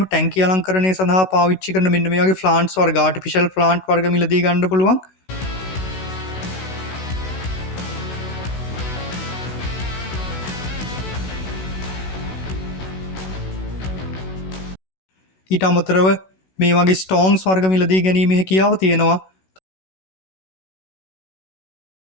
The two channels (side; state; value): right; late; 16 ms